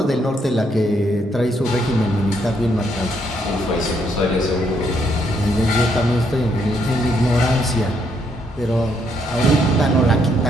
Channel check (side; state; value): both; normal; correlation 0.73